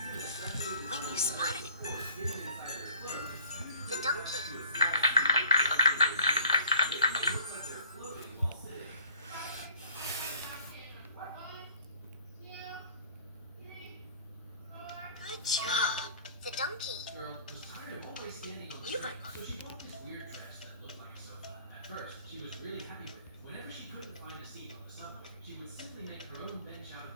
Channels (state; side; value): inverted; both; correlation -0.53